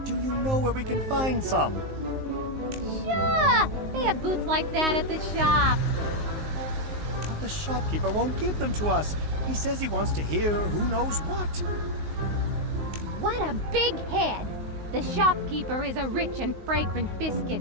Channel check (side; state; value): left; late; 19 ms